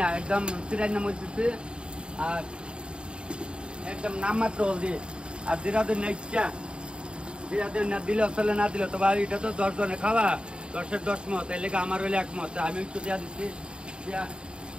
না একদম চিরাই না মরতেছে আর একদম নাম মাত্র হলদি আর জিরাদের না ইচ্ছা জিরাদের না দিলেও চলে না দিলেও তো এটা তো 10 জনে খাওয়া 10-এর 10 মত এই লেগে আমার হইলে 1 মত আমি একটু দেওয়া দিচ্ছি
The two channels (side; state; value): left; late; 0.052 ms